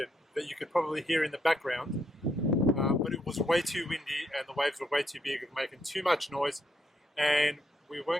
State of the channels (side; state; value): both; normal; correlation 0.77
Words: that you could probably hear in the background, but it was way too windy and the waves were way too big and making too much noise, and we